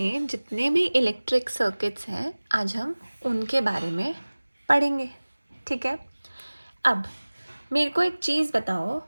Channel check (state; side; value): inverted; both; correlation -1.00